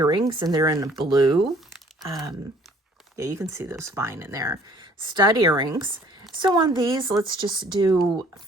and they're in blue. Yeah, you can see those fine in there. Stud earrings. So on these, let's just do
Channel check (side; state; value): both; normal; correlation 0.56